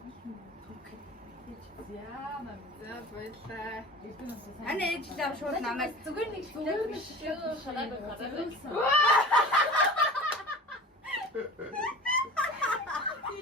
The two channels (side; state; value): both; normal; correlation 0.38